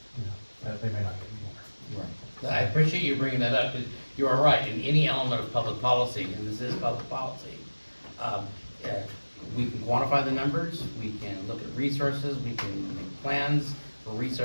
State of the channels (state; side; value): inverted; both; correlation -1.00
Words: you know, that they may not get anymore. I appreciate you bringing that up, 'cause you are right, in any element of public policy, and this is public policy, we can quantify the numbers, we can look at resources, we can make plans for